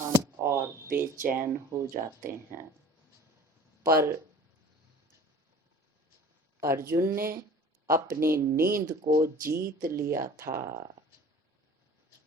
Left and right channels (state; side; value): normal; both; correlation 0.45